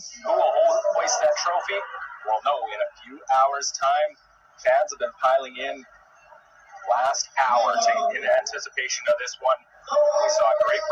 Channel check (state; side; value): identical; both; correlation 1.00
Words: Who will hoist that trophy? We'll know in a few hours' time. Fans have been piling in last hour in anticipation of this one. We saw a great